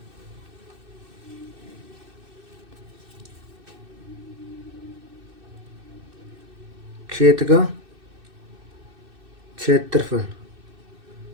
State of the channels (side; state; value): left; late; 2.6 ms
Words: खेत का क्षेत्रफल